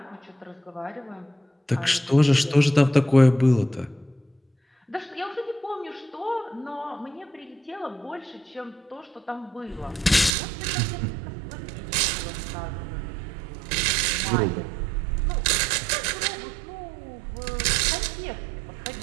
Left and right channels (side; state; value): left; drops out; at 10.3 s